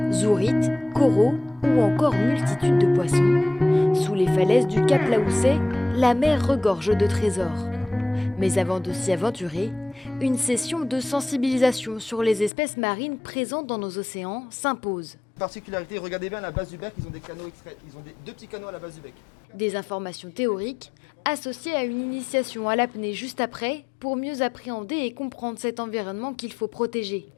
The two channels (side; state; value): right; drops out; at 12.5 s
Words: Zourites, coraux ou encore multitude de poissons. Sous les falaises du Cap Laousset, la mer regorge de trésors. Mais avant de s'y aventurer, une session de sensibilisation sur les espèces marines présentes dans nos océans s'impose. Particularité, regardez bien à la base du bec, ils ont des canaux extraits, ils ont deux petits canaux à la base du bec. Des informations théoriques associées à une initiation à l'apnée juste après pour mieux appréhender et comprendre cet environnement qu'il faut protéger.